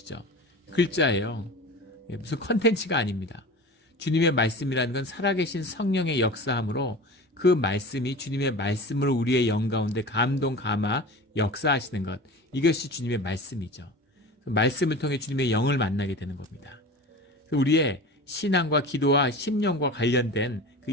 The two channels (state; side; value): normal; both; correlation 0.34